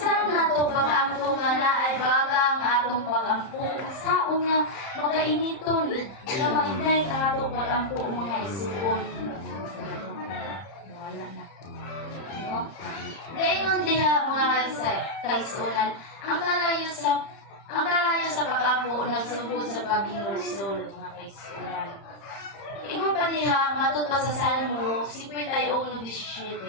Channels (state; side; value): late; right; 30 ms